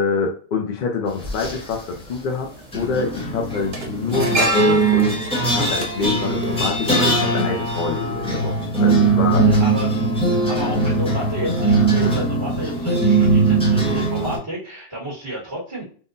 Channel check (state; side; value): normal; both; correlation -0.05